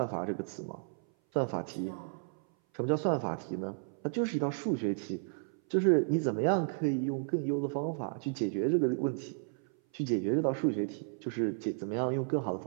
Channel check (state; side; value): silent; left; 56 dB below the other